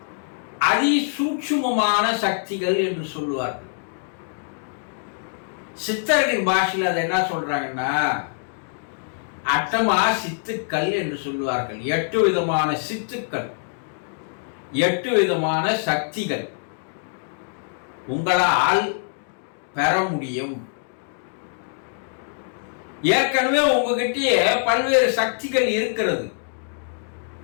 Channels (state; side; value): silent; right; digital silence